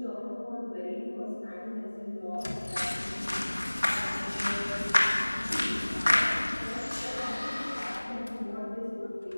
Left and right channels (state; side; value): inverted; both; correlation -1.00